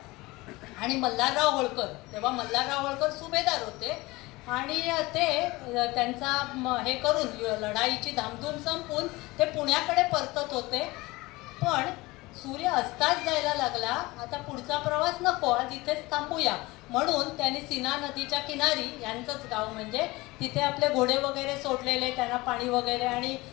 आणि मल्हारराव होळकर, तेव्हा मल्हारराव होळकर सुभेदार होते आणि ते त्यांचा हे करून लढाईची धामधूम संपून ते पुण्याकडे परतत होते. पण सूर्य अस्ताच जायला लागला. आता पुढचा प्रवास नको, आज इथेच थांबूया म्हणून त्यांनी सीना नदीच्या किनारी, यांचंच गाव म्हणजे, तिथे आपले घोडे वगैरे सोडलेले, त्यांना पाणी वगैरे आणि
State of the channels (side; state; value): right; quieter; 21.4 dB